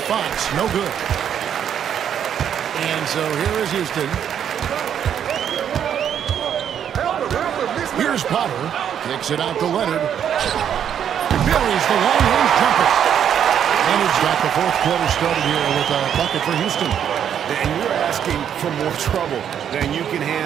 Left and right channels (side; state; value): left; quieter; 9.0 dB